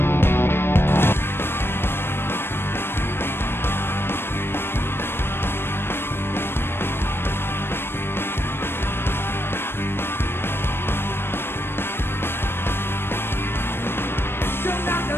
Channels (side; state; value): right; late; 0.11 ms